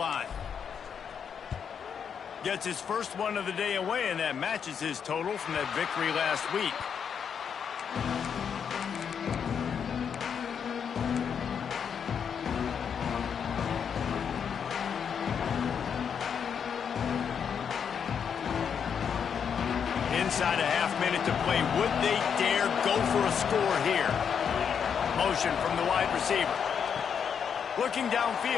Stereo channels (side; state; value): right; quieter; 7.3 dB